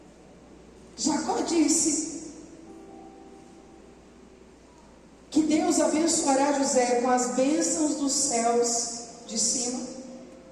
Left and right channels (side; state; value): both; identical; correlation 1.00